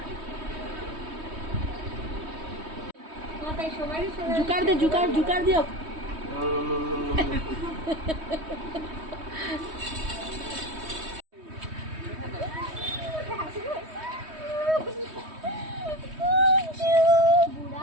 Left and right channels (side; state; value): left; late; 3.2 ms